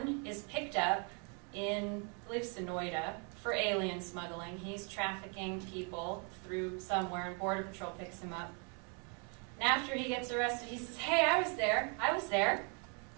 is picked up in, I believe, Sonoita for alien smuggling. He's trafficking people through somewhere, and Border Patrol picks him up. And after he gets arrested, he says, hey, I was there.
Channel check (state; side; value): quieter; left; 37.1 dB